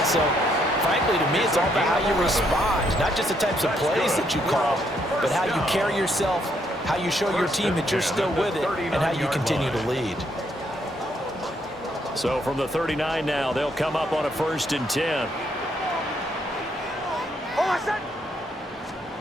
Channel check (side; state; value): both; normal; correlation 0.73